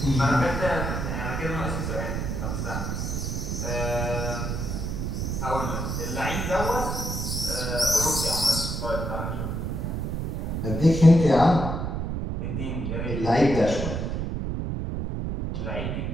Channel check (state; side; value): noise; right; rumble, 2 dB below the sound